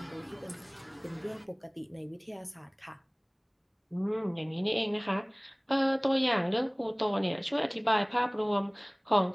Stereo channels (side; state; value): both; identical; correlation 1.00